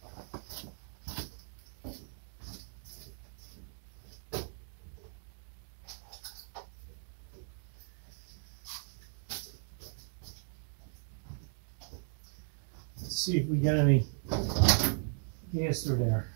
Let's see if we got any gas through there.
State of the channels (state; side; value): silent; left; 53 dB below the other